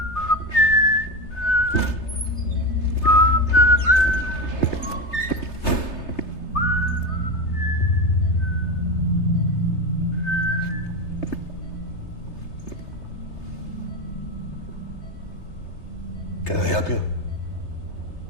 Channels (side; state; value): right; late; 3.3 ms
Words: Can I help you?